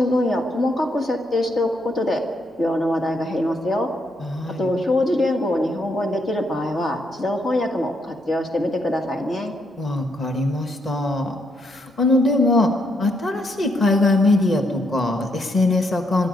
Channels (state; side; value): normal; both; correlation 0.76